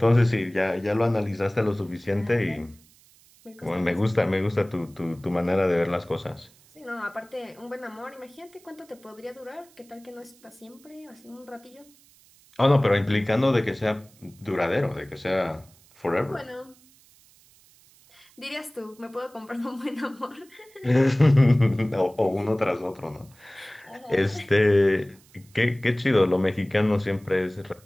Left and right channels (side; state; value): right; noise; hiss, 28 dB below the sound